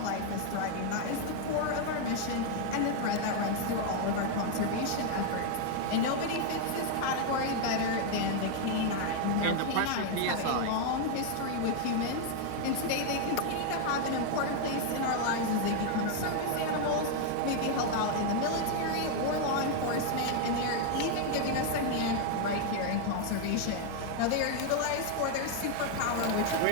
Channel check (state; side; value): different; both; correlation 0.00